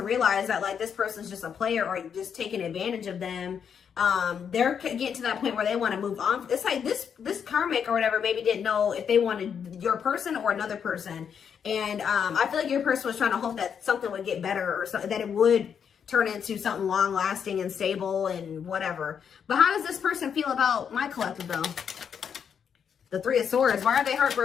realize that like this person's just a player or just taking advantage of them. They're getting to that point where they want to move on. It's like this karmic or whatever maybe didn't know if they wanted your person or another person. And I feel like your person was trying to hope that something would get better or something, that it would turn into something long lasting and stable and whatever. But how does this person feel about my collective though? The Three of Swords. Why are they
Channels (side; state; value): right; quieter; 7.5 dB